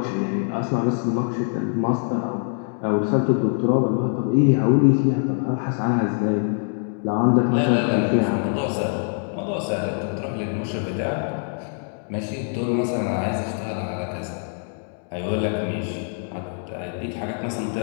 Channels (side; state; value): right; silent; 59 dB below the other